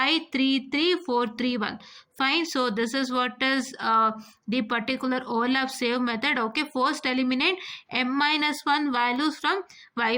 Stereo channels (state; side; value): identical; both; correlation 1.00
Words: 3 3 4 3 1. Fine, so this is what is the particular overlap save method. Okay, first eliminate m minus 1 values from